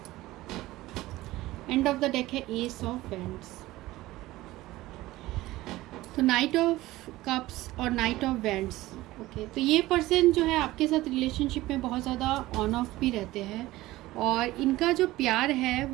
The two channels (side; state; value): left; quieter; 17.6 dB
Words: End of the deck है एस ऑफ वैंड्स। तो नाइट ऑफ कप्स और नाइट ऑफ वैंड्स, ओके, तो ये person जो है आपके साथ रिलेशनशिप में बहुत ज़्यादा ऑन ऑफ भी रहते हैं, और इनका जो प्यार है